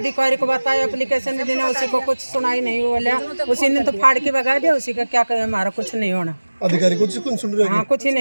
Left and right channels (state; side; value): inverted; both; correlation -1.00